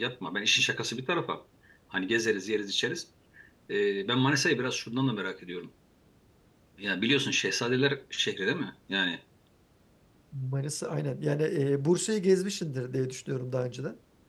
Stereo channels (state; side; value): identical; both; correlation 1.00